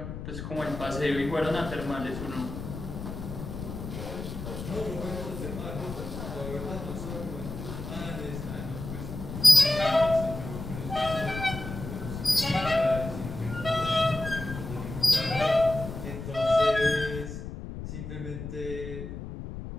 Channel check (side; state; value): left; noise; rumble, 8 dB below the sound